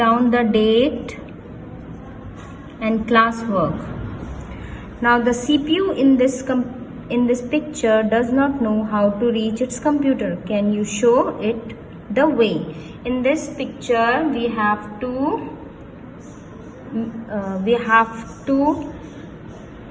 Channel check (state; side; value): identical; both; correlation 1.00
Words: the date and classwork. Now the CPU in this picture does not know how to reach its computer. Can you show it the way? In this picture we have to